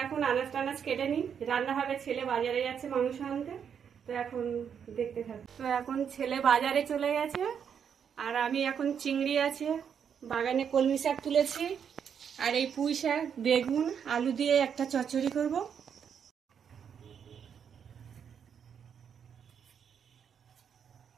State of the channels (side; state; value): left; quieter; 7.7 dB